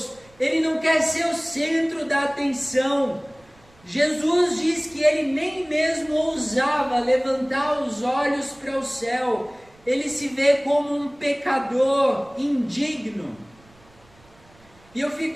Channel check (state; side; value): noise; right; rumble, 29 dB below the sound